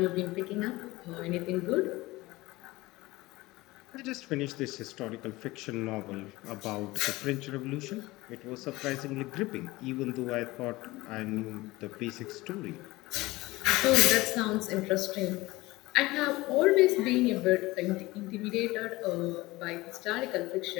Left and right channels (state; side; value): quieter; right; 20.1 dB